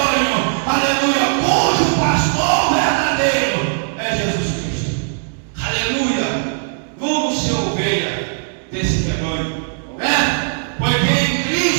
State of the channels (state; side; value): silent; left; digital silence